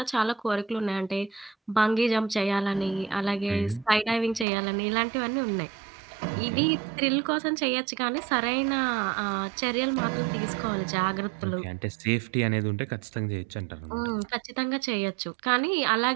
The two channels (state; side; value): drops out; left; at 4.5 s